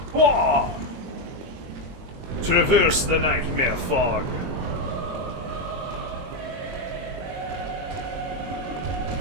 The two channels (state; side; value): late; left; 22 ms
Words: Whoa! Traverse the nightmare fog.